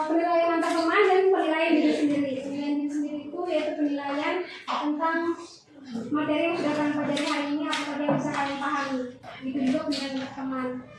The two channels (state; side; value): identical; both; correlation 1.00